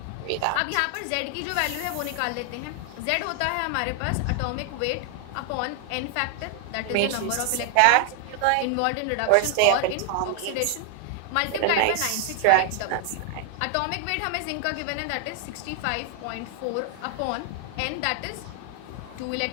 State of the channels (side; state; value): both; different; correlation 0.00